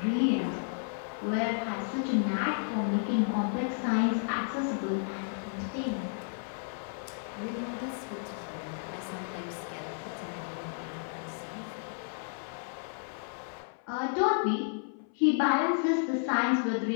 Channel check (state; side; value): silent; right; 56 dB below the other